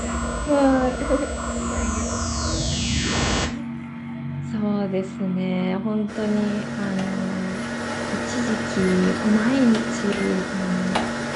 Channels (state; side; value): identical; both; correlation 1.00